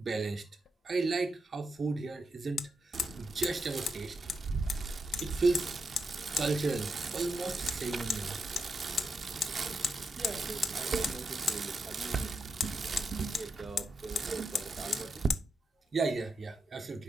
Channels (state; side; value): normal; both; correlation 0.83